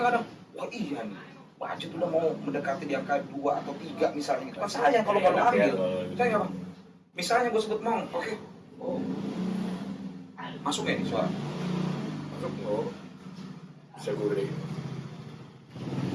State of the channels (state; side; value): identical; both; correlation 1.00